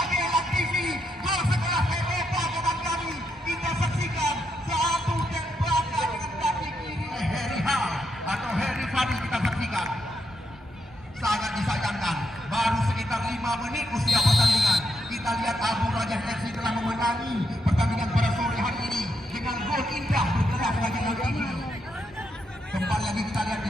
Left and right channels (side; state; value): both; normal; correlation 0.80